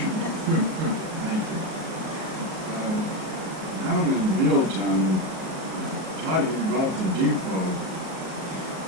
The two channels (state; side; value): late; left; 38 ms